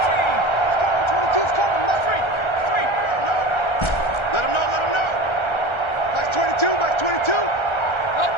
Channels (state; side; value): late; right; 1.3 ms